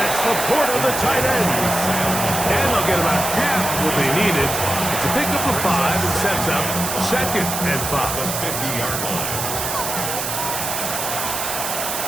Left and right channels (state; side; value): noise; right; hiss, 3 dB below the sound